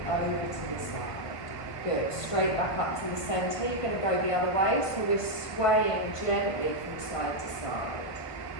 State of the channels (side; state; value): right; late; 1.5 ms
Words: over to the side. Good. Straight back up to the centre. You're going to go the other way, so we're swaying gently from side to side.